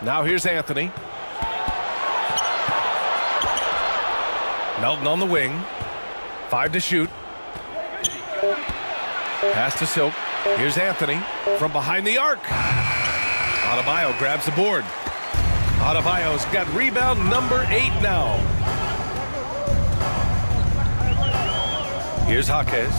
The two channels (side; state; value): both; inverted; correlation -1.00